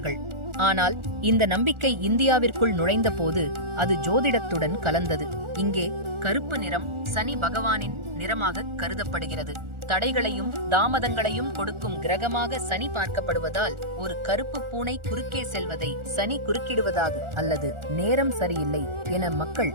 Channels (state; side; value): late; left; 1.4 ms